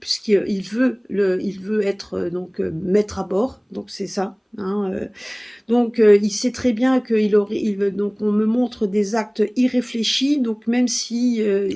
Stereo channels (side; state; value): both; identical; correlation 1.00